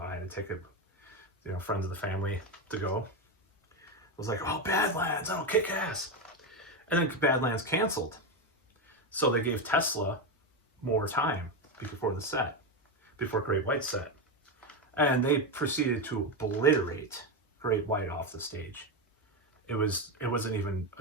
I had a ticket, you know, friends of the family to go. I was like, oh, Badlands, that'll kick ass. And then Badlands canceled. So they gave Tesla more time before Great White set. And they proceeded to obliterate Great White off the stage. It wasn't even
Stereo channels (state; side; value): normal; both; correlation 0.11